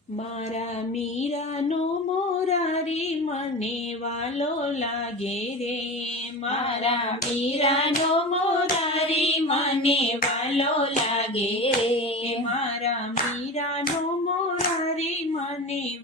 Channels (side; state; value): both; normal; correlation 0.28